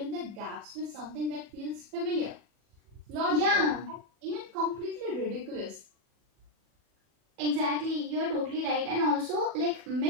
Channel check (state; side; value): late; left; 40 ms